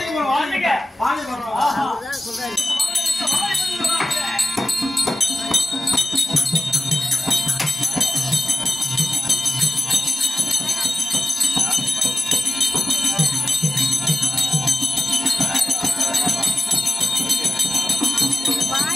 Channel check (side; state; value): both; normal; correlation 0.94